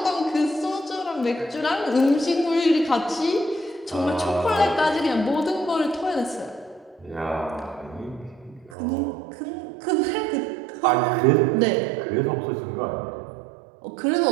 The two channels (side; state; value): left; drops out; at 8.8 s